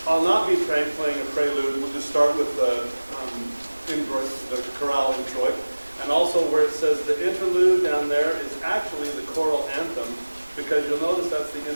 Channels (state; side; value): inverted; both; correlation -1.00